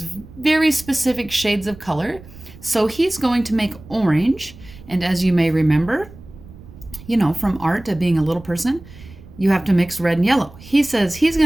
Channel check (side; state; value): right; noise; rumble, 19 dB below the sound